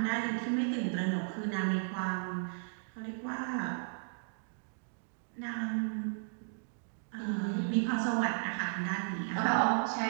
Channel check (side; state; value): left; silent; digital silence